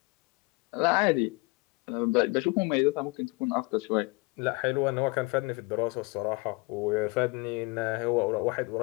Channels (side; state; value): right; quieter; 27.2 dB